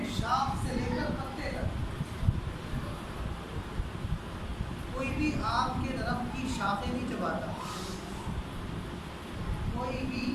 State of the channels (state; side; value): identical; both; correlation 1.00